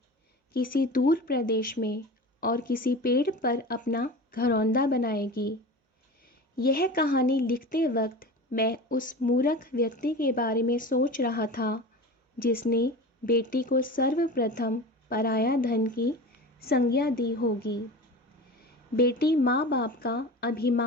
किसी दूर प्रदेश में और किसी पेड़ पर अपना घरौंदा बनाएगी। यह कहानी लिखते वक्त मैं उस मूर्ख व्यक्ति के बारे में सोच रहा था जिसने बेटी को सर्वप्रथम पराया धन की संज्ञा दी होगी। बेटी माँ बाप का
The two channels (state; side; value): normal; both; correlation 0.32